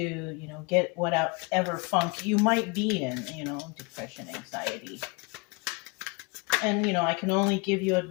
know, get whatever funk you might be in, you know, depression, anxiety. And, you know, I can only give you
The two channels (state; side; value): quieter; right; 29.6 dB